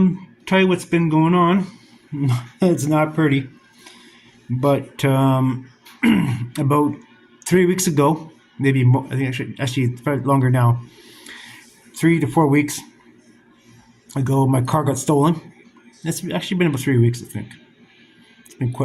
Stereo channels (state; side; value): identical; both; correlation 1.00